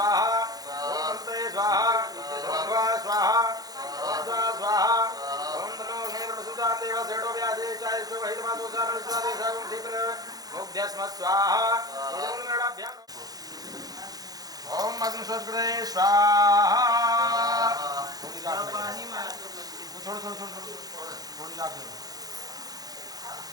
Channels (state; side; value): late; left; 0.18 ms